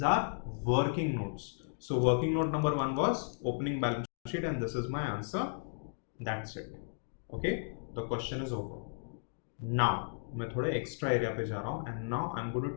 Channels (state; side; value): silent; right; digital silence